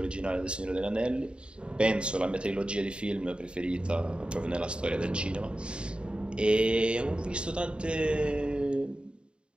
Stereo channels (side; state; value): left; late; 0.053 ms